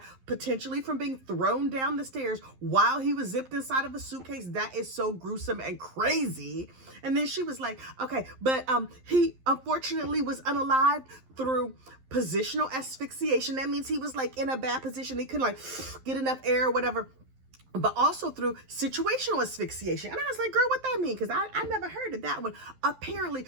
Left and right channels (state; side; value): late; left; 11 ms